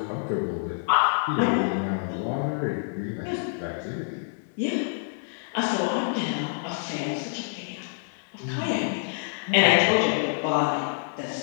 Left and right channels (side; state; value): right; silent; digital silence